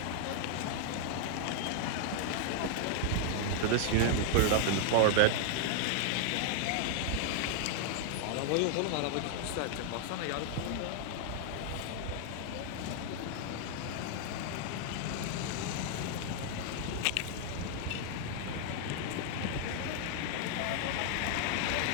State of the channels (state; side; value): different; both; correlation 0.00